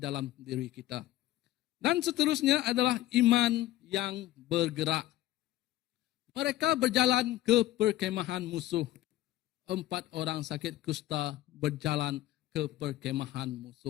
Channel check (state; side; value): quieter; right; 15.3 dB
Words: diri kita. Dan seterusnya adalah iman yang bergerak. Mereka berjalan ke perkemahan musuh. 4 orang sakit kusta berjalan ke perkemahan